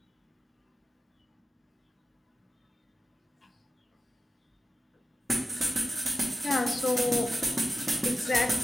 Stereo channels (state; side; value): normal; both; correlation 0.93